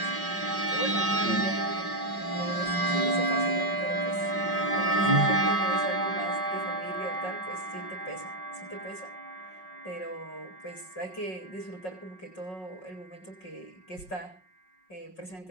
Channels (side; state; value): right; late; 5.4 ms